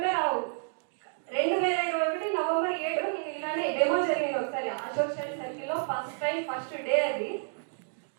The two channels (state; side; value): silent; left; digital silence